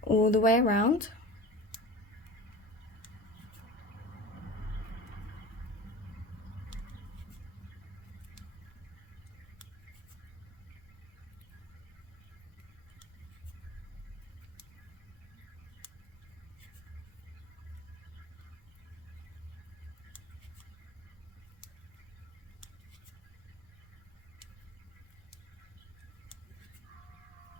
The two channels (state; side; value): normal; both; correlation 0.36